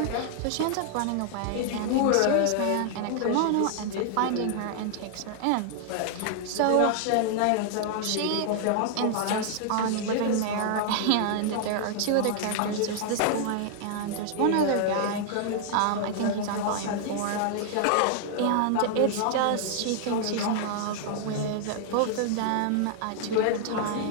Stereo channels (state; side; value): different; both; correlation 0.00